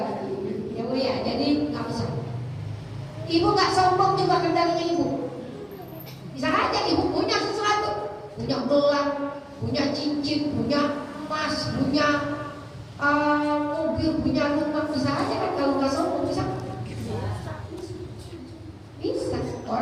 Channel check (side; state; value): both; identical; correlation 1.00